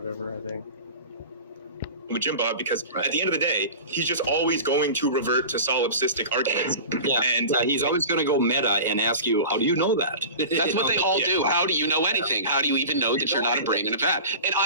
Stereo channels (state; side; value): inverted; both; correlation -0.35